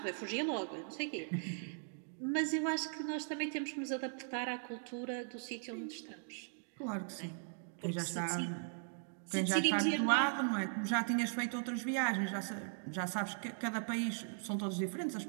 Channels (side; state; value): left; silent; digital silence